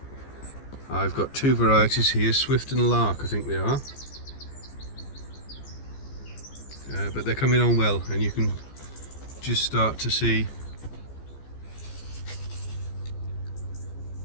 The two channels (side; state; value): right; late; 15 ms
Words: I've got two varieties here, Swift and Lark I think they are, but they're coming on well, and you can just start to see